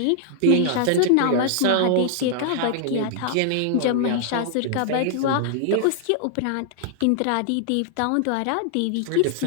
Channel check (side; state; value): both; different; correlation -0.01